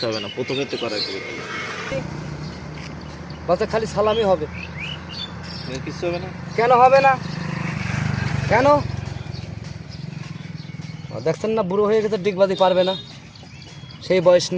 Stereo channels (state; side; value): identical; both; correlation 1.00